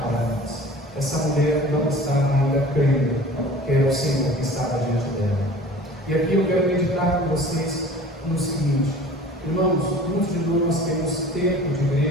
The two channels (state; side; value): normal; both; correlation 0.43